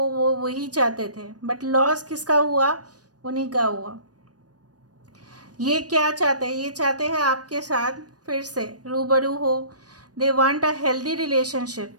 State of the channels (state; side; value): late; left; 0.68 ms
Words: वही चाहते थे। बट लॉस किसका हुआ? उन्हीं का हुआ। ये क्या चाहते हैं? ये चाहते हैं आपके साथ फिर से रूबरू हो। They want a healthy relationship